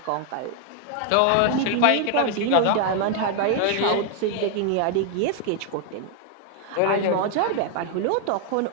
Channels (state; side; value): different; both; correlation 0.01